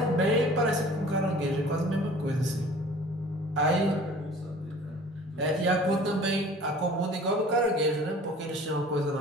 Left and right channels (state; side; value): normal; both; correlation 0.47